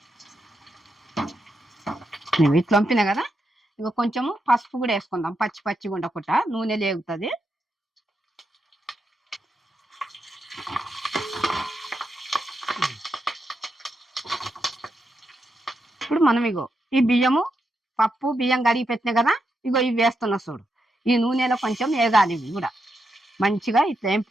నువ్వు ఇట్లా వంపినా కదా. ఇగో కొంచెము పసుపు కూడా వేసుకుందాం, పచ్చిగా ఉండకుండా నూనె లేగుతుంది. ఇప్పుడు మనం ఇగో ఈ బియ్యము పప్పు బియ్యం కడిగి పెట్టినాయి కదా. ఇగో ఇవి వేస్తున్నా చూడు. ఈ నూనెలో కొంచెం వేగాలి. ఇవి కూడా మంచిగా ఇట్లా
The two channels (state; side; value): normal; both; correlation 0.84